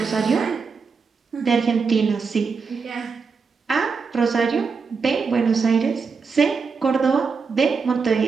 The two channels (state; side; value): quieter; left; 5.2 dB